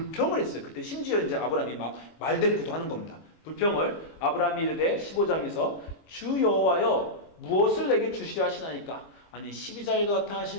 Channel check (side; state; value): right; late; 25 ms